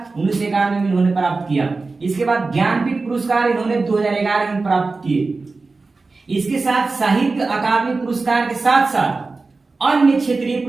1991 में इन्होंने प्राप्त किया। इसके बाद ज्ञानपीठ पुरस्कार इन्होंने 2011 में प्राप्त किए। इसके साथ साहित्य अकादमी पुरस्कार के साथ साथ अन्य क्षेत्रीय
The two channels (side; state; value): left; quieter; 3.8 dB